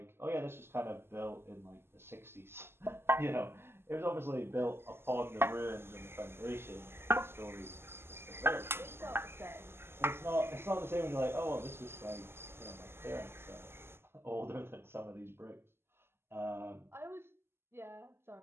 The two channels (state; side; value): late; left; 0.12 ms